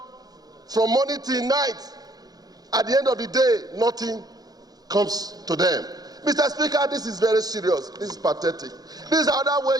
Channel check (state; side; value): late; left; 0.19 ms